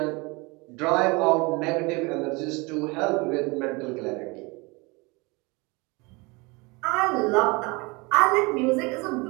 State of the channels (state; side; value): quieter; left; 26.4 dB